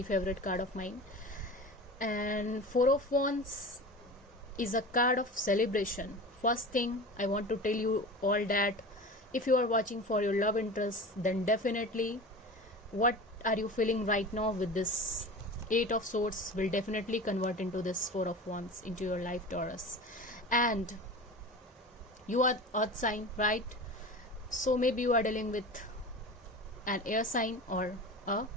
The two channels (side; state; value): both; normal; correlation 0.33